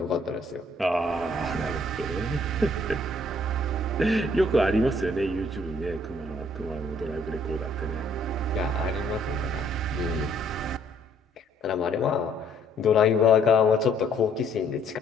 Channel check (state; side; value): normal; both; correlation 0.64